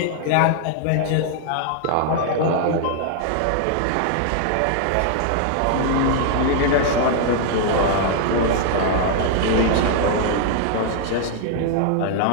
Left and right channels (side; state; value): both; different; correlation 0.00